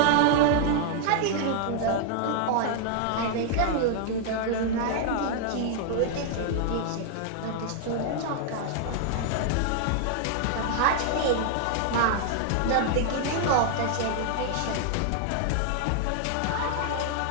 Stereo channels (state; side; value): different; both; correlation 0.00